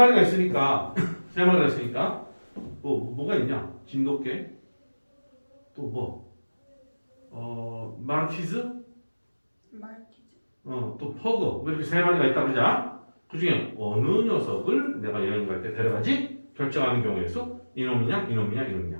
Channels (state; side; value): inverted; both; correlation -1.00